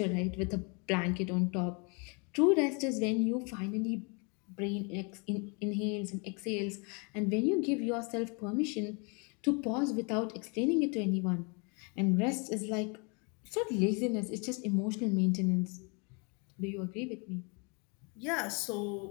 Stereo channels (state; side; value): quieter; right; 33.5 dB